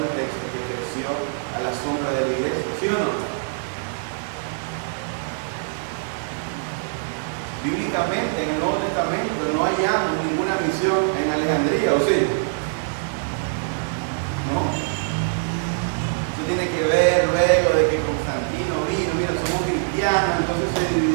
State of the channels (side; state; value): left; silent; digital silence